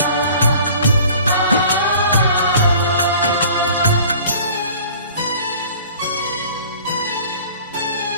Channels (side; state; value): both; inverted; correlation -0.47